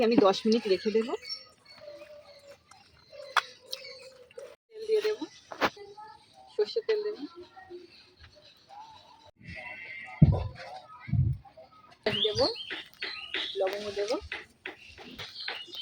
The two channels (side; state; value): both; identical; correlation 1.00